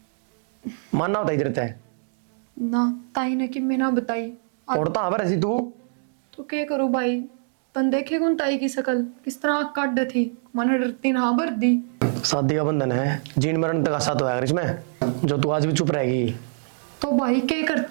मानना होता इधर है ना ताई ने कि मैं ना बताई। और तो हबर ऐसी तू तो क्या करूँ भाई, तन देखे कौन ताई की शकल किस तरह आँख काट थी, मन डरती ना भर दी। शादी का बंधन है, जीन मरण तक साथ होगा इसमें, जो तू आज भी चुप रहेगी। तो भाई क्या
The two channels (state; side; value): silent; left; digital silence